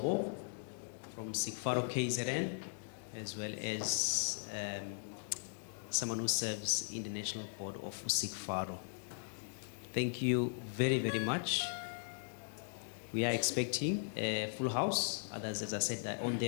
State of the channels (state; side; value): silent; right; digital silence